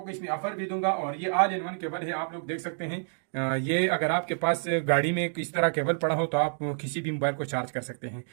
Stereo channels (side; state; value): left; silent; 59 dB below the other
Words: को इसमें ऑफर भी दूंगा। और ये ऑल इन वन केबल है, आप लोग देख सकते हैं। ये अगर आपके पास गाड़ी में इस तरह केबल पड़ा हो तो आप किसी भी मोबाइल को चार्ज कर सकते हैं।